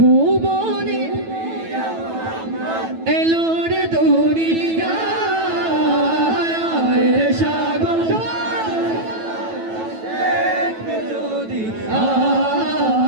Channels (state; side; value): late; left; 9.1 ms